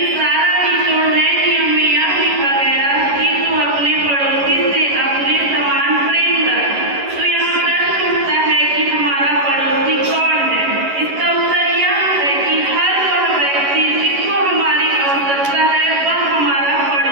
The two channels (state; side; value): late; left; 11 ms